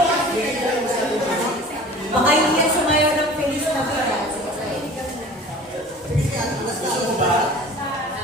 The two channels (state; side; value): normal; both; correlation 0.43